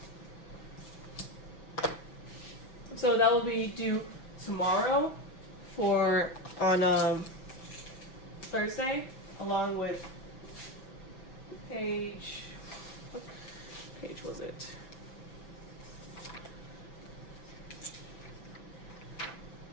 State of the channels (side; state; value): right; late; 6.0 ms